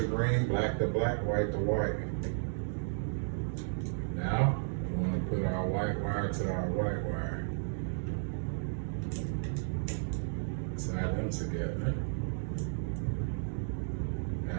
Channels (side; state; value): left; silent; digital silence